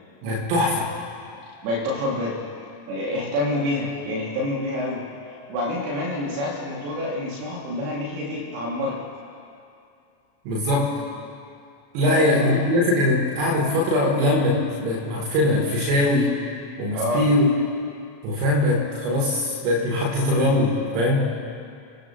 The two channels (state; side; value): late; left; 35 ms